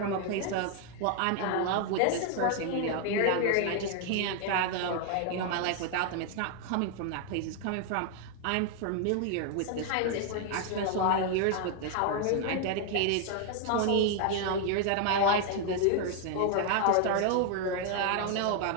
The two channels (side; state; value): both; different; correlation 0.00